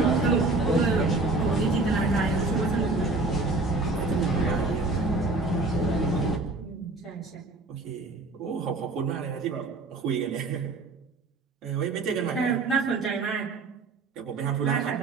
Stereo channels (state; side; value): quieter; left; 3.3 dB